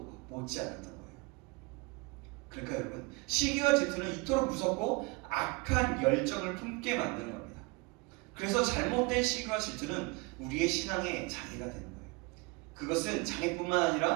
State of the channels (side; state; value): left; quieter; 27.3 dB